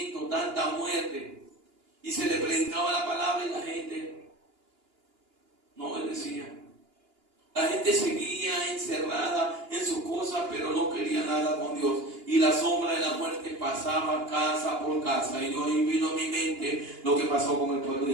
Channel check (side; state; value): left; late; 2.9 ms